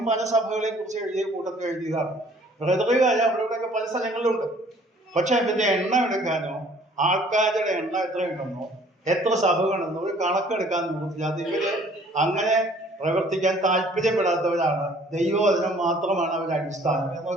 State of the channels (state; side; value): normal; both; correlation 0.56